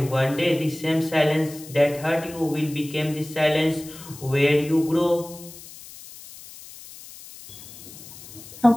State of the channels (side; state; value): left; noise; hiss, 17 dB below the sound